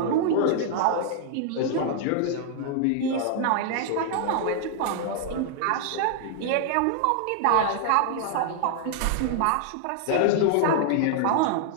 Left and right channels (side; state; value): both; different; correlation 0.00